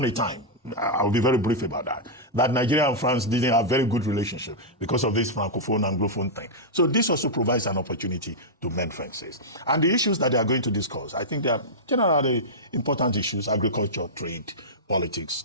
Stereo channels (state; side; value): normal; both; correlation -0.09